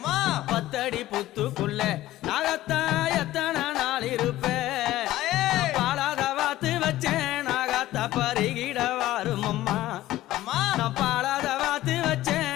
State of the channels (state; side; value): quieter; right; 15.4 dB